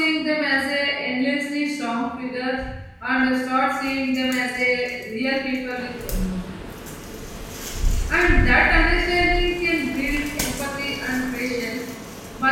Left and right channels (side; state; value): both; identical; correlation 1.00